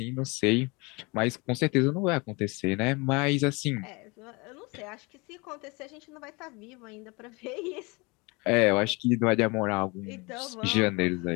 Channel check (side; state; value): right; quieter; 27.3 dB